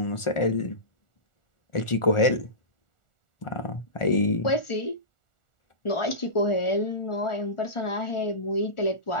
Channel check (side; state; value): right; late; 1.4 ms